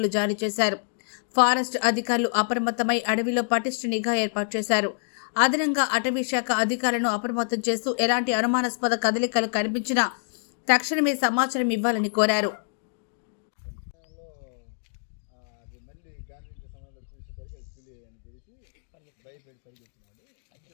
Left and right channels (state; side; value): silent; right; digital silence